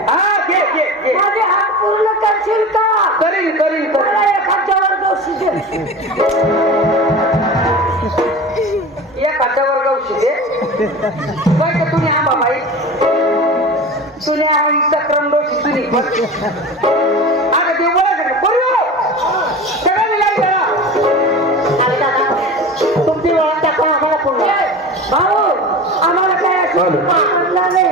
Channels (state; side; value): normal; both; correlation 0.32